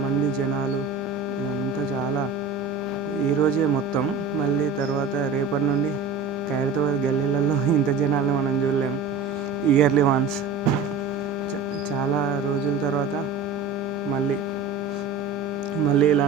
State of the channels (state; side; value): quieter; left; 4.3 dB